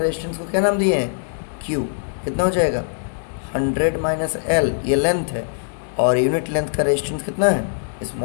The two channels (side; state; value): right; silent; digital silence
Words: को क्या नाम दिए हैं Q। कितना हो जाएगा 100 माइनस L, ये लेंथ है, और यूनिट लेंथ का रेजिस्टेंस कितना है